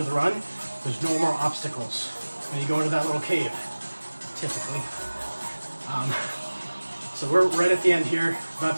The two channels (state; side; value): inverted; both; correlation -1.00